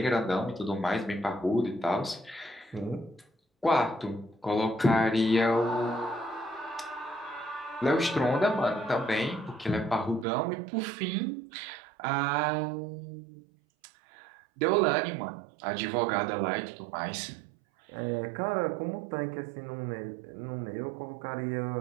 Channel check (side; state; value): left; drops out; at 10.2 s